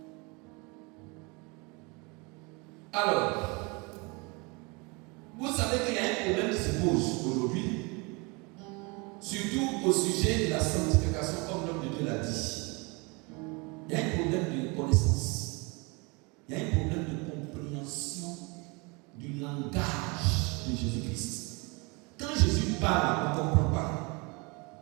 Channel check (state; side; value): quieter; left; 28.8 dB